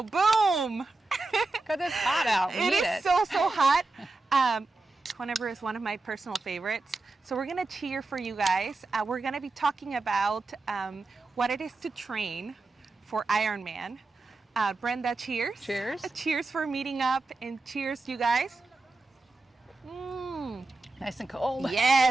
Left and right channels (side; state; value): left; quieter; 3.3 dB